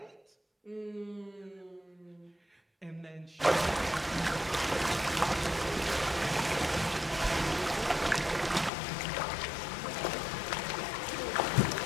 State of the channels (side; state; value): right; drops out; at 8.7 s